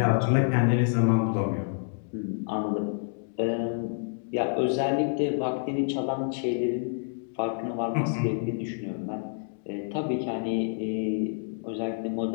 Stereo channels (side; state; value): right; silent; digital silence